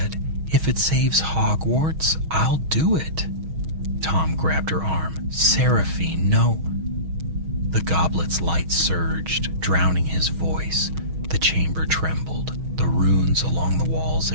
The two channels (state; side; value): late; left; 6.3 ms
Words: "If it saves Hogwarts, I'll do it." Tom grabbed her arm. "Seraphine, no." The goblet's light surged, drowning his voice. The chamber trembled. The runes along the walls